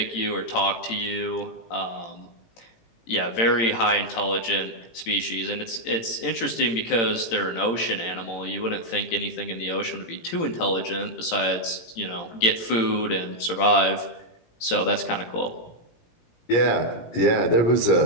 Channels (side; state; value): right; late; 18 ms